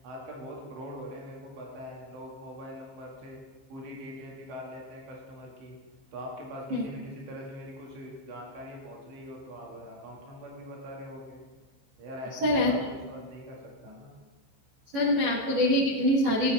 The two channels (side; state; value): left; late; 15 ms